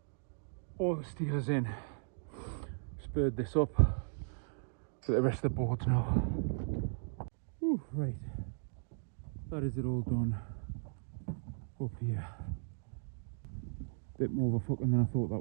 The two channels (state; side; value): silent; left; digital silence